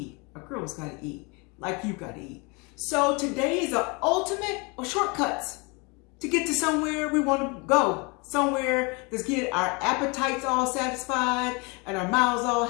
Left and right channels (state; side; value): quieter; right; 29.5 dB